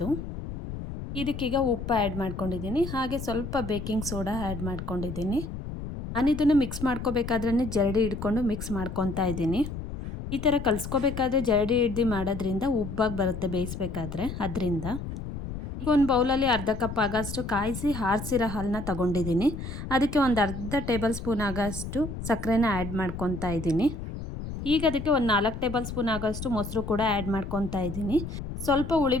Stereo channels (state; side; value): noise; left; rumble, 8 dB below the sound